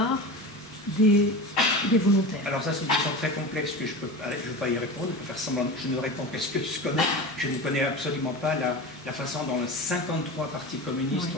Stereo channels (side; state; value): both; normal; correlation 0.29